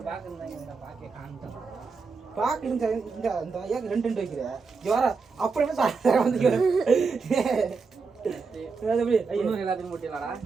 பாக்கு இருந்தா பாக்கே காமிட்டோம் பாக்கு இந்த இந்த ஐயாக்கு 2 வைக்கிற ஜோரா அப்படியே சார வந்து எப்படி ஐயோ இன்னும் எல்லாத்தையும் போட்டிடலாடா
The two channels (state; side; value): quieter; left; 4.8 dB